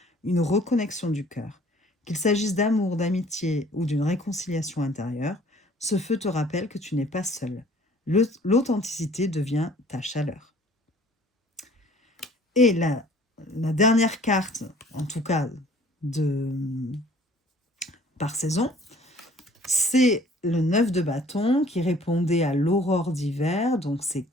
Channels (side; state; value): both; normal; correlation 0.54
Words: une reconnexion du cœur. Qu'il s'agisse d'amour, d'amitié ou d'une réconciliation intérieure, ce feu te rappelle que tu n'es pas seul. L'authenticité devient ta chaleur. Et la dernière carte, en tout cas par saison, c'est le 9 de bâton qui répondait à l'aurore d'hiver. Donc, c'est